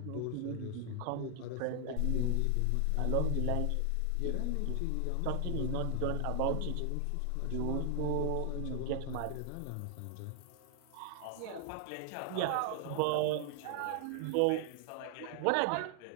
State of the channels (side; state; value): both; different; correlation 0.00